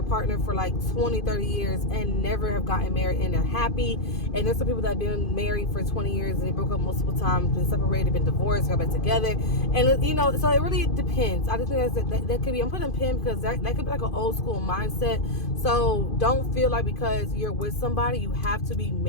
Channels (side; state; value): right; late; 2.5 ms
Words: partner for like 20-30 years and never have gotten married, and they're happy. And there's some people that have been married for 20 years and they broke up multiple times, been separated, been divorced, got back together. And so it really depends. I just think that could be, I'm putting a pin because that could be like an old school mindset. So don't feel like because you're with somebody you have to be